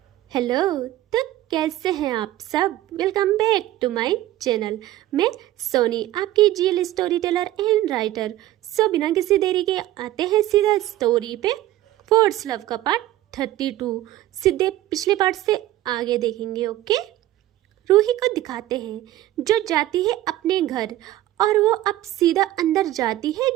हेलो। तो कैसे हैं आप सब? Welcome back to my channel. मैं सोनी, आपकी GL storyteller and writer. So बिना किसी देरी के आते हैं सीधा स्टोरी पे। फोर्स लव का पार्ट 32 सीधे पिछले पार्ट से आगे देखेंगे। ओके, रूही को दिखाते हैं जो जाती है अपने घर, और वो अब सीधा अंदर जाती है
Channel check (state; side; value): quieter; left; 14.8 dB